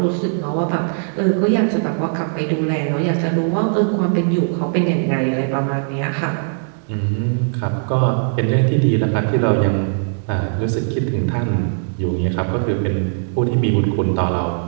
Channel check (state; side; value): silent; left; digital silence